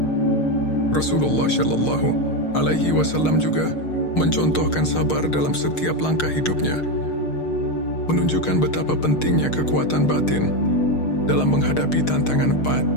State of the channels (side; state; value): right; late; 6.5 ms